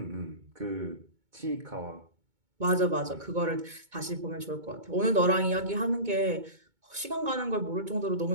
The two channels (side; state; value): left; late; 2.2 ms